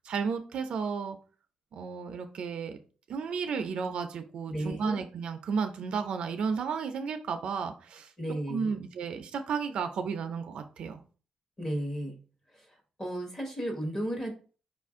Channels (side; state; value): left; quieter; 4.2 dB